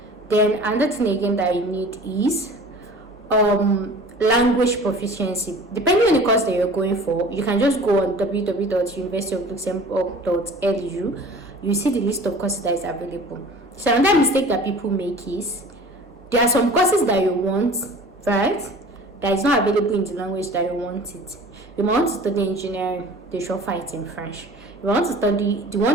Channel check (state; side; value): normal; both; correlation 0.43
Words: Then another thing again that you need is language proficiency. Depending on the course that you're going for, you can just go on www.universityofluxembourg.lu. You see the list of courses that is available. So another mistake that people make is, there are some courses that you want, right, that is not available in the language that you want it. You want to study engineering, they should offer it in French. You want to study the one